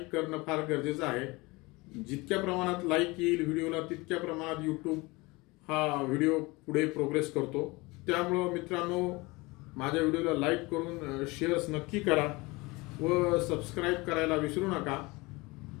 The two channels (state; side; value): quieter; right; 23.8 dB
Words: करणं फार गरजेचं आहे. जितक्या प्रमाणात लाईक येईल व्हिडिओला तितक्या प्रमाणात यूट्यूब हा व्हिडिओ पुढे प्रोग्रेस करतो. त्यामुळं मित्रांनो माझ्या व्हिडिओला लाईक करून शेअर्स नक्की करा व सबस्क्राईब करायला विसरू नका.